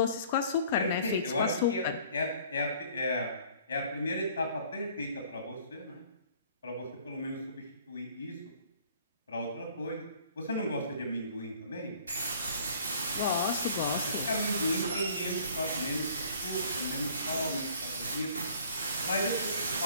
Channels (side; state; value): both; inverted; correlation -0.54